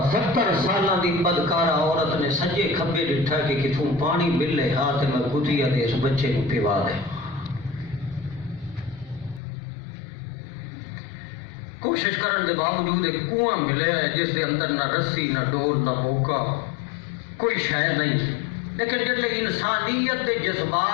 70 سالاں دی بدکارہ عورت نے سجے کھبے ڈٹھا کہ کتوں پانی ملے ہاتھ میں کتیا دے اس بچے کو پیوا دے۔ کوشش کرن دے باوجود ایک کنواں ملے ہے جس دے اندر نہ رسی نہ ڈول نہ بوکا، کوئی شے نہیں، لیکن جب انسانیت دے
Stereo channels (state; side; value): drops out; right; at 9.4 s